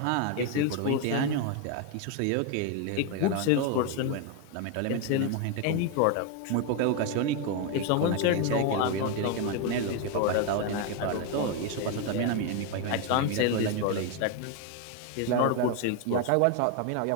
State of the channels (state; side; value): different; both; correlation 0.01